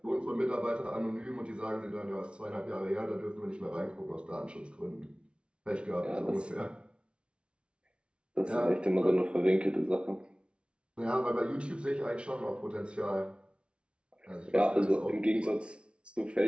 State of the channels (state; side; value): late; left; 0.058 ms